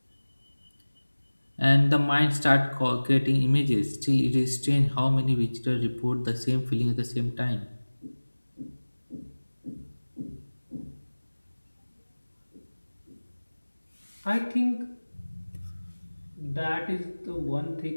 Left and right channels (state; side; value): inverted; both; correlation -1.00